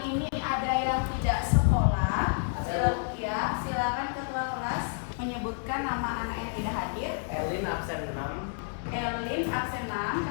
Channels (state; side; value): silent; right; 58 dB below the other